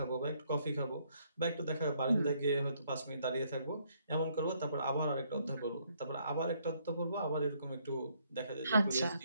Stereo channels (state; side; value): inverted; both; correlation -0.69